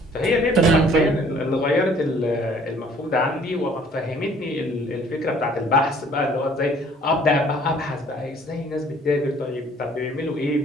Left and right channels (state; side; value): normal; both; correlation 0.57